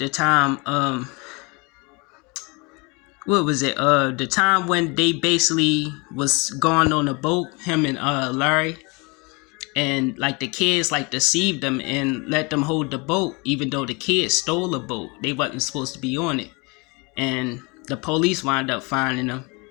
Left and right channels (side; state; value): right; quieter; 28.7 dB